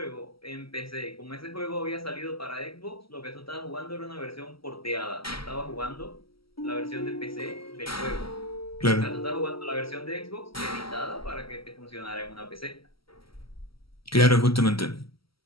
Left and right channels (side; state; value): right; late; 0.75 ms